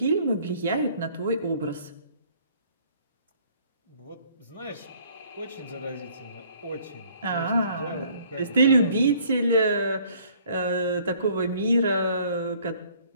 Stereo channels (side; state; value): both; inverted; correlation -0.59